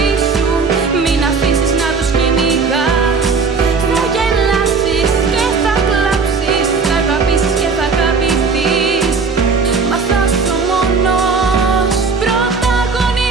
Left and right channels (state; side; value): quieter; left; 4.7 dB